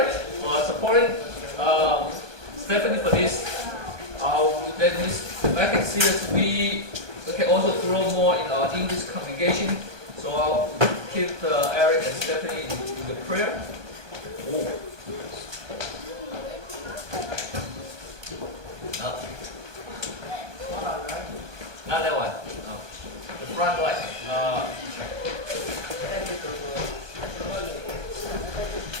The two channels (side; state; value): left; late; 1.2 ms